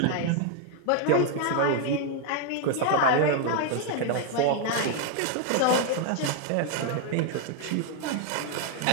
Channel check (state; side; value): different; both; correlation 0.00